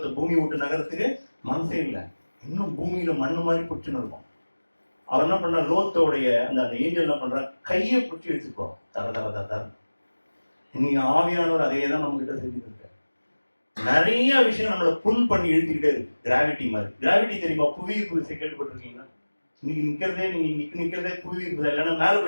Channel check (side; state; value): both; inverted; correlation -1.00